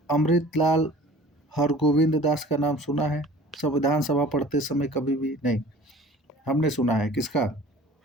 अमृतलाल हरगोविंद दास का नाम सुना है संविधान सभा पढ़ते समय, कभी भी नहीं। हमने सुना है किसका,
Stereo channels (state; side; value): normal; both; correlation 0.46